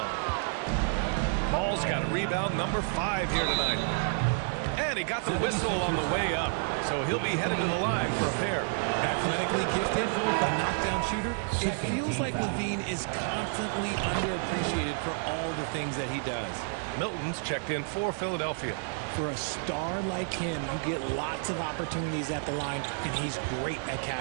Ball's got a rebound number 5 here tonight. And he got the whistle on the way up. So he'll be headed to the line for a pair. Athletically gifted, a knockdown shooter. It feels like LaVine is constantly underappreciated for all the things that he does. Milton's checked in for Philadelphia. For a star like him, you get lots of opportunities at the line, and he's great at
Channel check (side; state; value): left; silent; 58 dB below the other